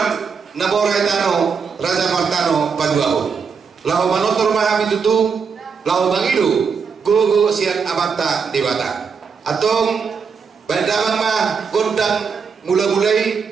Naborai Tano Raja Martano Paduaho lahu manotor mahami tutu lahu bangidu gogo sian abata dewata atong bandamang mah gondang mula-mulai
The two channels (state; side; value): quieter; left; 5.9 dB